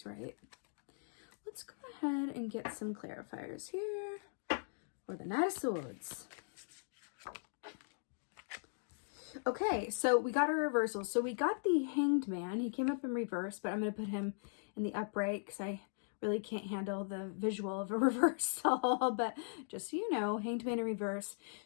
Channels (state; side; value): silent; right; digital silence